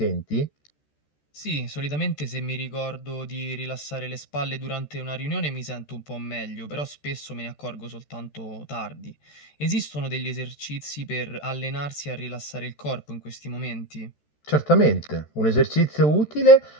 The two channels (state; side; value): late; right; 13 ms